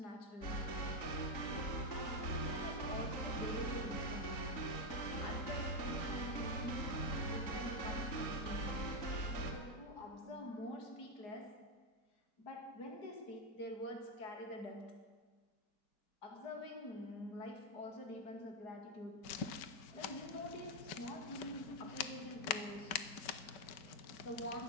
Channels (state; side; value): late; right; 5.2 ms